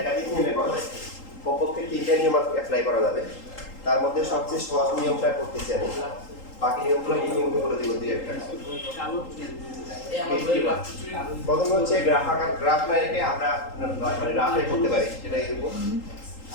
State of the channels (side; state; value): right; late; 3.8 ms